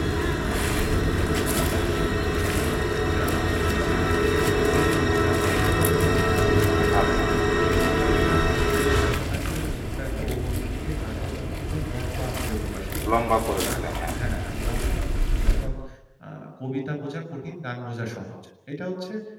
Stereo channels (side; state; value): both; identical; correlation 1.00